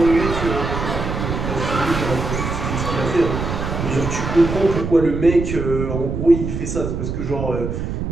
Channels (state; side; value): noise; right; rumble, 4 dB below the sound